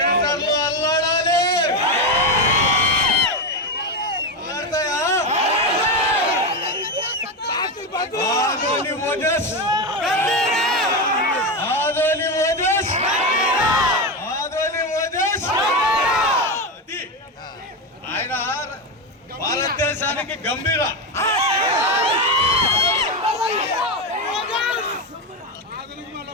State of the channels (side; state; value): both; normal; correlation 0.13